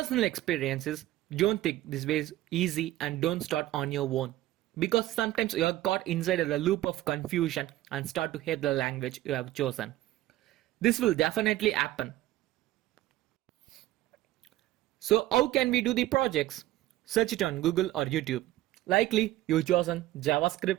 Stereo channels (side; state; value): left; quieter; 15.5 dB